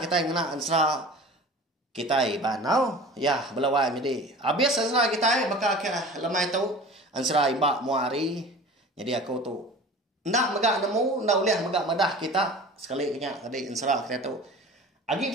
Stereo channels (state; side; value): normal; both; correlation 0.39